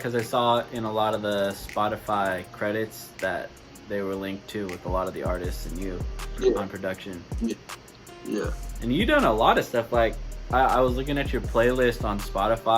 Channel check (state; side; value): identical; both; correlation 1.00